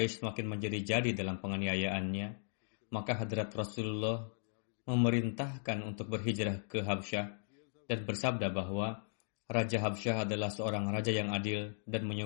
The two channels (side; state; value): right; silent; digital silence